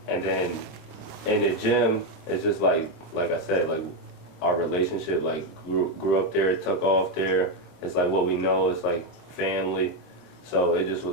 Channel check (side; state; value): right; late; 26 ms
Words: And then in the gym, it's just like I said, like, our relationship like grew up there, took off there. It's like what we know, it's like family. So it just was